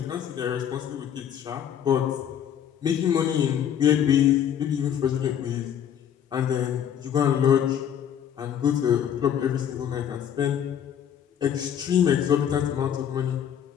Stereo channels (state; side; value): quieter; right; 9.3 dB